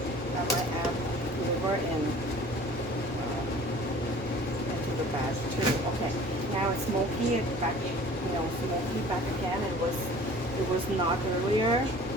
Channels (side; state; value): both; normal; correlation 0.47